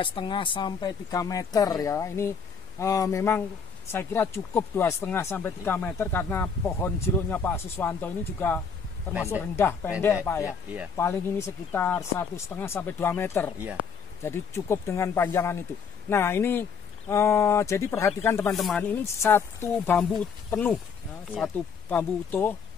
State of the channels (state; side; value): quieter; right; 6.1 dB